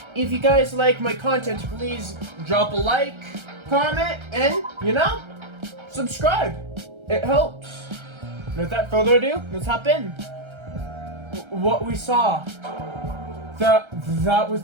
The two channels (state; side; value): late; left; 1.3 ms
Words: if you guys like my content, please drop a like, comment, and subscribe. It helps. And without further ado, let's hop in. What we saw. That was